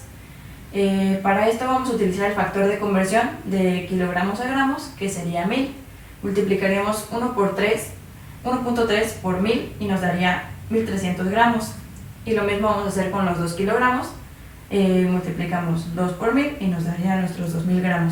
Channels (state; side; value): identical; both; correlation 1.00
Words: Para esto vamos a utilizar el factor de conversión de kilogramos a gramos, que sería 1000. Multiplicaríamos 1.3 por 1000 y nos daría 1300 gramos. Y lo mismo vamos a hacer con los 2 kilogramos. Multiplicamos 2 por 1000 y nos daría nuestros 2000